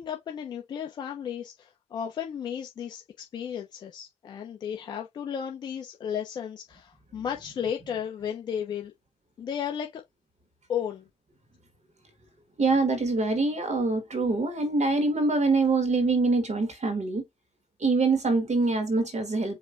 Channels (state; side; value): normal; both; correlation 0.61